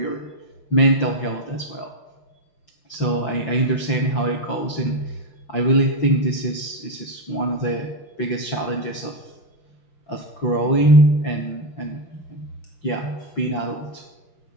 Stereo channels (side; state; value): right; late; 5.9 ms